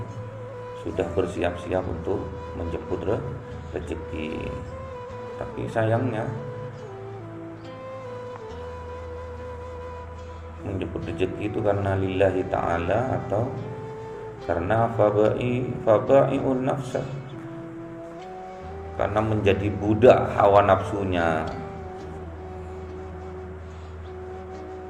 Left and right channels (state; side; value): identical; both; correlation 1.00